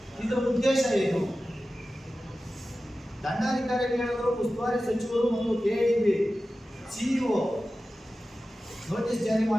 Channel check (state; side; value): normal; both; correlation 0.94